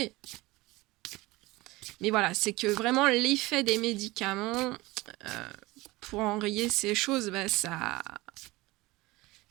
Mais voilà, c'est que vraiment l'effet des médicaments, pour enrayer ces choses,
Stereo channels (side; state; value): left; quieter; 20.8 dB